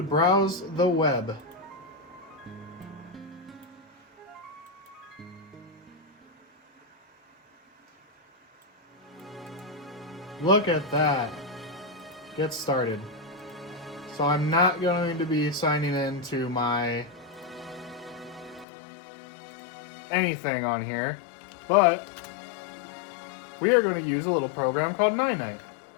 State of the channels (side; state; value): right; drops out; at 18.7 s